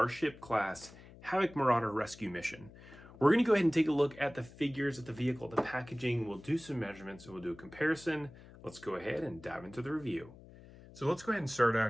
class Havoc Marauder rescue mission. We're going to go ahead and take a look at the figures of the vehicle, the packaging. We'll do some measurements and we'll do a comparison. Let's go ahead and dive into the review. So let's go ahead and start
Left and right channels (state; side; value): noise; left; hum, 20 dB below the sound